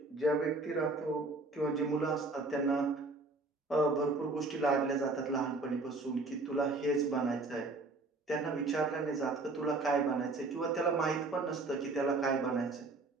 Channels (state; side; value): quieter; left; 3.3 dB